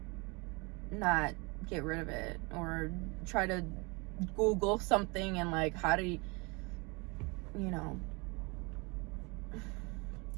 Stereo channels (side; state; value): left; quieter; 28.6 dB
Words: not get rid of it, or try to Google something and like how to, you know,